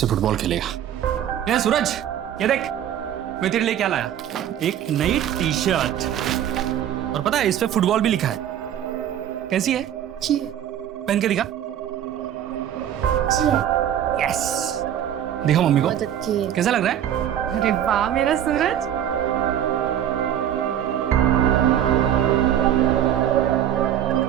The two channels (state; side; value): quieter; left; 10.5 dB